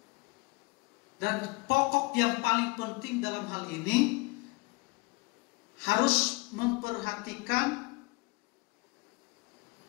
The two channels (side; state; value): right; quieter; 26.4 dB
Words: Dan pokok yang paling penting dalam hal ini harus memperhatikan,